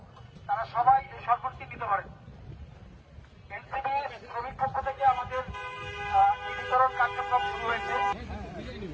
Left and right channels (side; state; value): both; identical; correlation 1.00